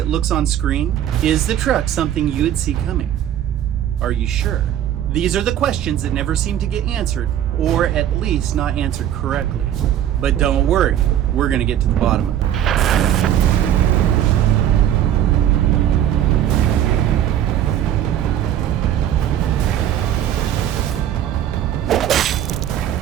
looks on screen? Is the truck something you would see coming? Are you sure? These are the questions that never seem to get answered, or at least not answered correctly. But don't worry, we're gonna get to the bottom of it.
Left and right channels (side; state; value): left; quieter; 11.0 dB